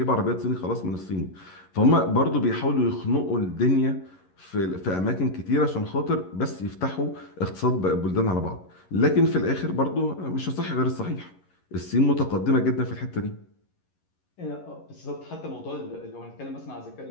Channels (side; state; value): right; late; 11 ms